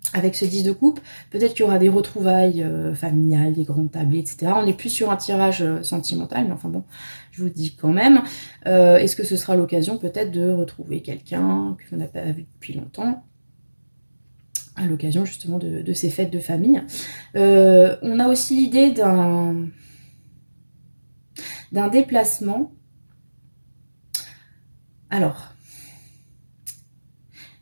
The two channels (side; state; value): both; inverted; correlation -1.00